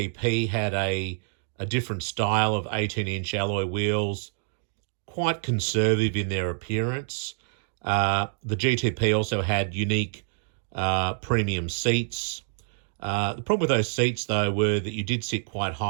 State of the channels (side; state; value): left; silent; digital silence